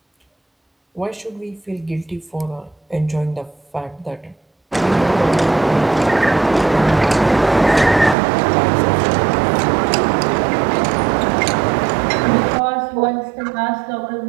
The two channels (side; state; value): left; drops out; at 8.2 s